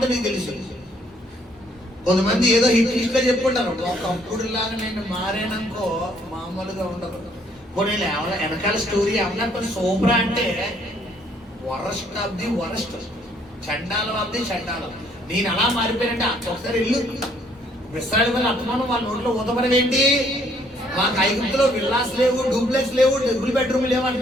నీకు తెలుసు. కొంతమంది ఏదో హిట్ గా చెప్పుకుంటారు, ఒకప్పుడు లాగా నేను మారాననుకో మామూలుగా ఉండదు. నేను వెనకాల స్టోరీ ఏమన్నా కొన్ని సూపరా అంటే వరస్ట్ ఆఫ్ ది వరస్ట్, చండాలం ఆఫ్ ది చండాలం. నేను అలా మారిపోయినట్టే. ఒకసారి ఇల్లు విశ్రాడి వల్ల అత్తమానం వాళ్ళ నోట్లో ఊతపరం ఏంటి? మాకు ఐగుప్తులో విల్లాస్ లేవు, డూప్లెక్స్ లేవు, డబుల్ బెడ్రూమ్ లేవు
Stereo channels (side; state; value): both; normal; correlation 0.65